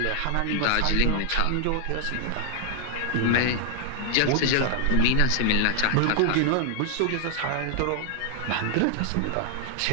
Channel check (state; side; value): different; both; correlation 0.01